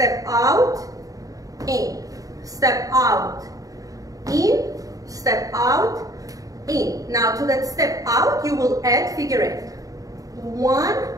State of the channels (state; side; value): late; left; 0.17 ms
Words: out, in, step out, in, step out, in. Now to that step out, you will add figure eight. 1,